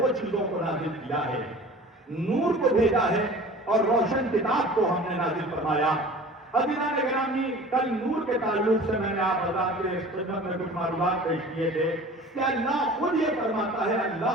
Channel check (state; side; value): normal; both; correlation 0.42